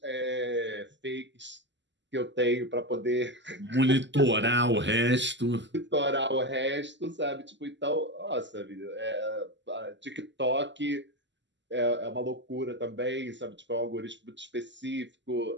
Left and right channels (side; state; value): left; late; 0.53 ms